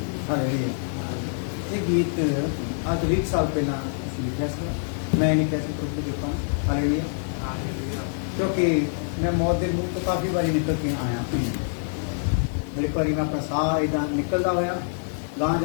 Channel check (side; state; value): right; silent; digital silence